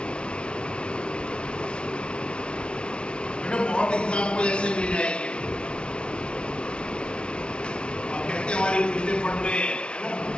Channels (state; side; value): late; right; 0.057 ms